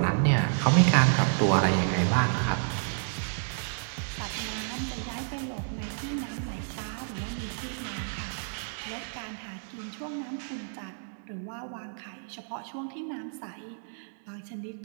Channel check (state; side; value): silent; left; digital silence